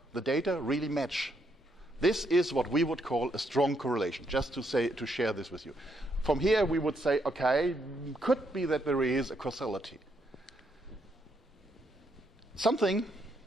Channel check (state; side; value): normal; both; correlation 0.76